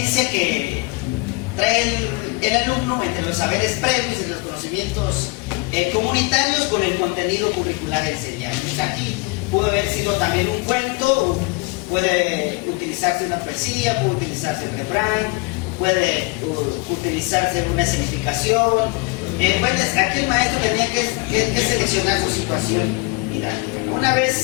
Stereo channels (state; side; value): quieter; right; 27.7 dB